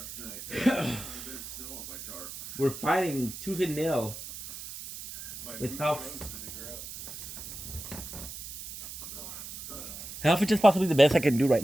night. A bit of snow on my tarp. We're fighting tooth and nail with health. Health is just possibly the best I can do right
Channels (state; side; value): noise; right; hiss, 10 dB below the sound